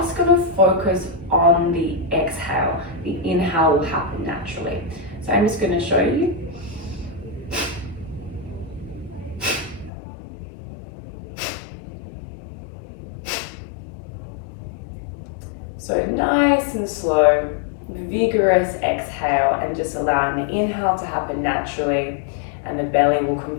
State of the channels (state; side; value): drops out; right; at 9.9 s